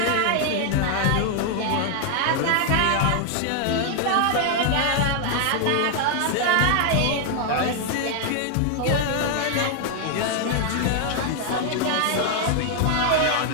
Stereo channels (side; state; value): both; different; correlation 0.00